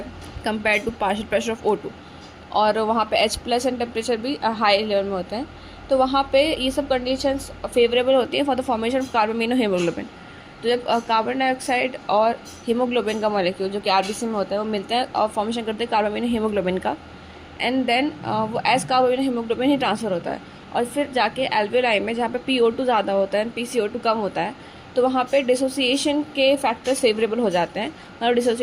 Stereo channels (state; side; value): identical; both; correlation 1.00